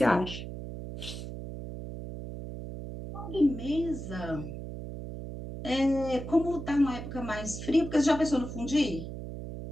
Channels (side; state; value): right; noise; hum, 9 dB below the sound